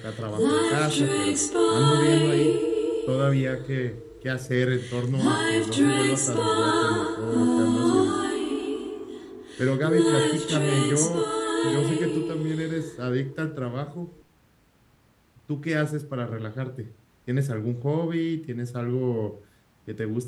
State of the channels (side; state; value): both; identical; correlation 1.00